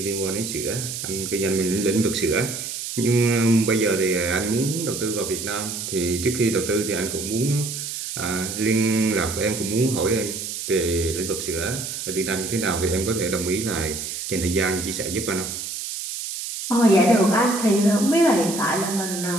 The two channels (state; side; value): noise; right; hiss, 6 dB below the sound